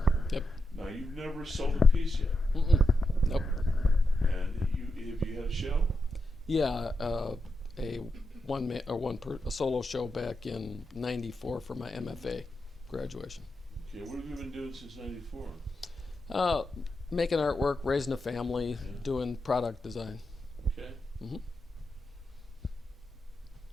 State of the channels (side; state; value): both; normal; correlation 0.86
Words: Yep. Now, you've never sold a piece yet. Mm-mm. Nope. And have you had a show? Yeah, a solo show back in '94 for my MFA graduation. Okay, what have you been doing since '94? Making artwork, raising a family, doing product design. Okay. Mm-hmm.